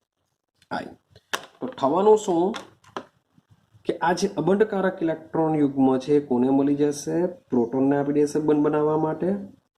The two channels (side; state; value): both; identical; correlation 1.00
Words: તો થવાનું શું કે આ જે અબંધકારક ઇલેક્ટ્રોન યુગ્મ છે કોને મળી જશે? પ્રોટોનને આપી દેશે બંધ બનાવવા માટે,